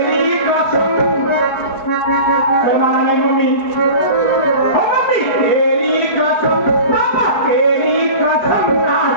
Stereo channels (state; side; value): late; right; 4.6 ms